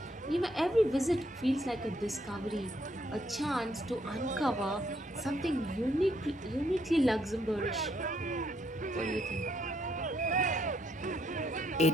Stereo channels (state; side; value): normal; both; correlation 0.73